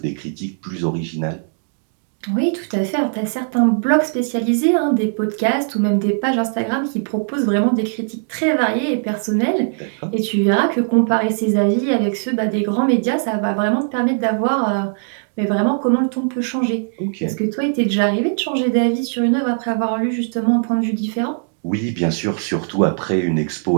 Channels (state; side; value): silent; left; digital silence